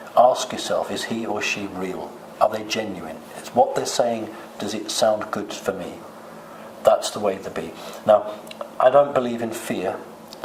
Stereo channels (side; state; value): both; identical; correlation 1.00